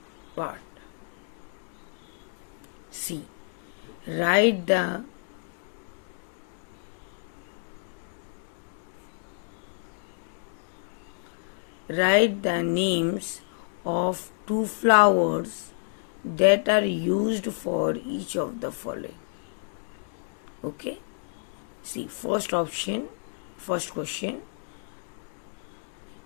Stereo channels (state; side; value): silent; right; digital silence